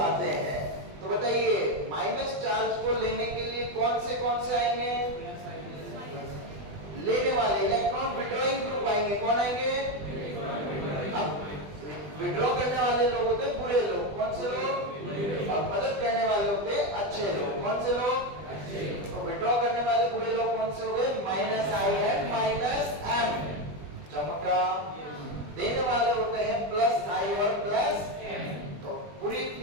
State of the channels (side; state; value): left; late; 20 ms